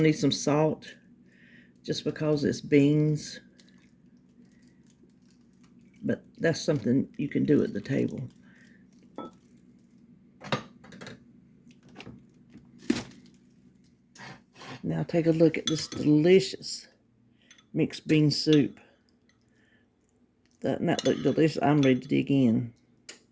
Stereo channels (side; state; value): both; identical; correlation 1.00